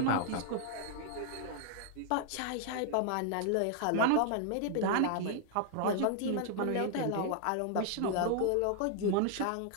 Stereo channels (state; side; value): different; both; correlation 0.00